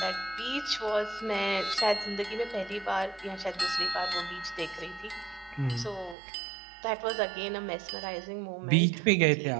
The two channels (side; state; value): left; drops out; at 6.2 s